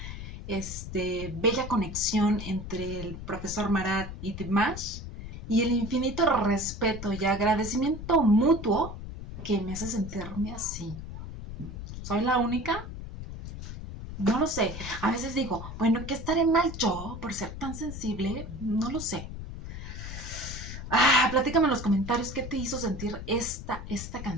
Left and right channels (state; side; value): noise; left; rumble, 9 dB below the sound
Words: bella conexión entre el profesor Marat y Dimash, y el infinito respeto y agradecimiento mutuo que me hace sentirme así. ¿Soy la única? No lo sé. A veces digo, bueno, ¿qué estaré mal yo por ser tan sensible? No lo sé. Platícame en los comentarios qué te hizo sentir esta